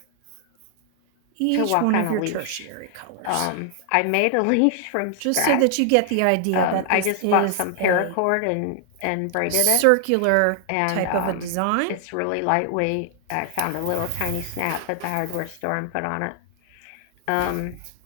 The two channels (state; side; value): different; both; correlation 0.00